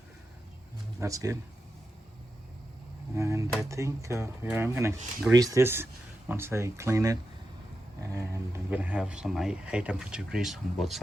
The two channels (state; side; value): normal; both; correlation 0.89